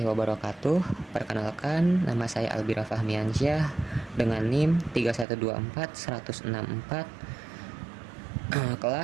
wabarakatuh. Perkenalkan, nama saya Albira Fahmiansyah dengan NIM 3124164,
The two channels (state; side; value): drops out; left; at 5.2 s